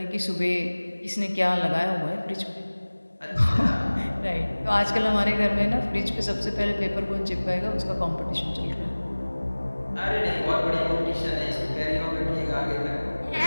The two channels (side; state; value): both; inverted; correlation -1.00